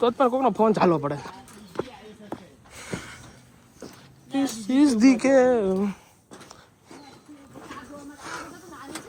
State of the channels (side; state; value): both; identical; correlation 1.00